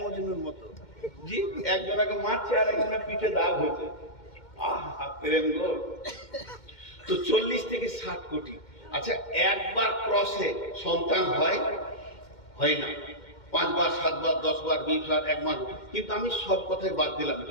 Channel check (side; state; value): right; late; 2.1 ms